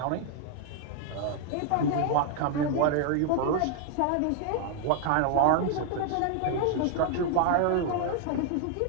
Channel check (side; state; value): both; different; correlation 0.00